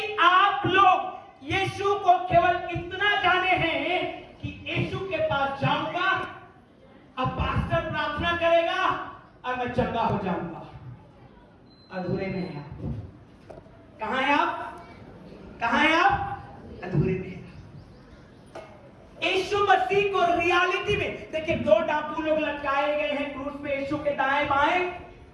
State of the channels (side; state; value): both; identical; correlation 1.00